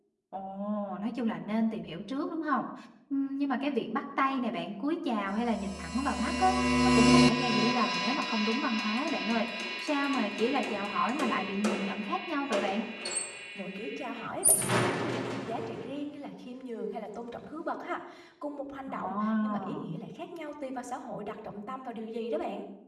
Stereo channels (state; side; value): identical; both; correlation 1.00